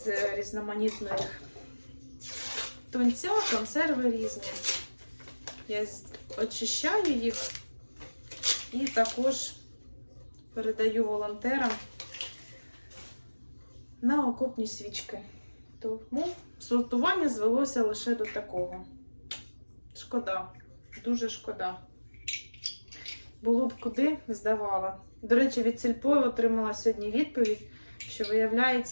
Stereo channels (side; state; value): both; inverted; correlation -1.00